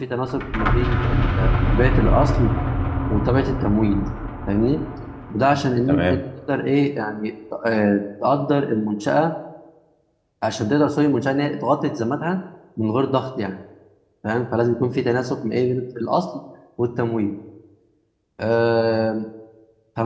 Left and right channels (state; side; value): identical; both; correlation 1.00